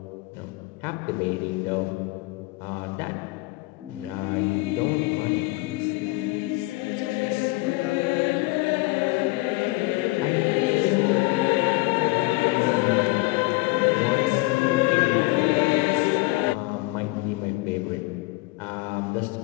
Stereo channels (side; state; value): right; quieter; 22.4 dB